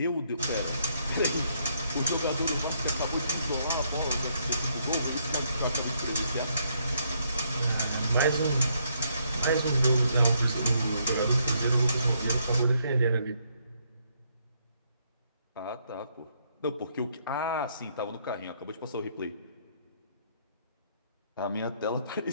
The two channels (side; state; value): both; inverted; correlation -0.72